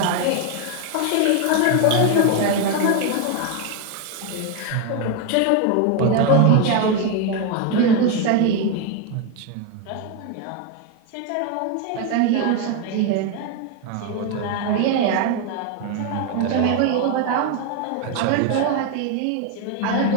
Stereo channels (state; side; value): different; both; correlation 0.01